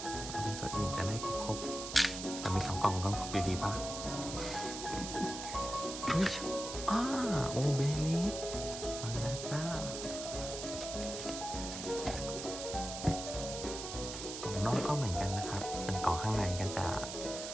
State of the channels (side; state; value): right; noise; hiss, 7 dB below the sound